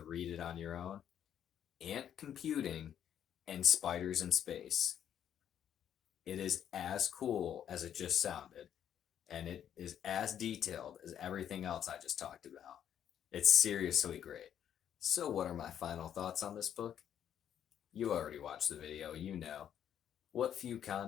read it on your own. Ant computing and spiders in space. It is as cool as it just sounded, and it is as detailed as everything else I just talked about. It's seriously great. So, what are my final thoughts on this book? You already watched the video, you know. What few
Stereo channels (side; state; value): right; quieter; 9.7 dB